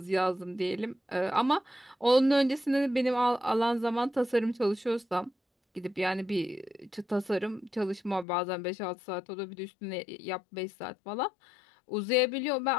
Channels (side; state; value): right; drops out; at 8.2 s